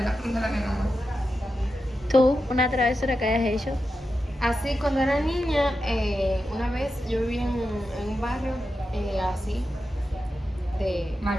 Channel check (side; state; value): both; normal; correlation 0.90